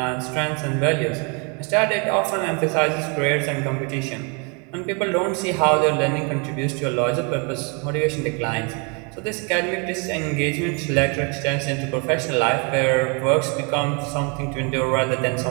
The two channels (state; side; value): quieter; left; 34.0 dB